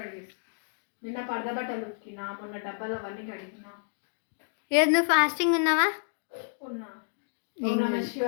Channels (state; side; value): silent; right; digital silence